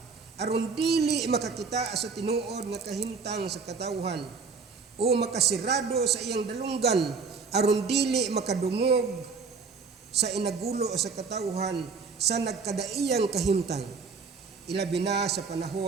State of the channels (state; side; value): quieter; left; 5.0 dB